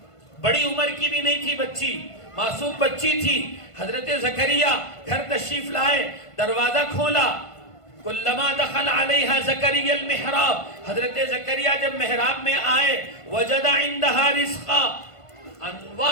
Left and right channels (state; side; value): late; right; 1.5 ms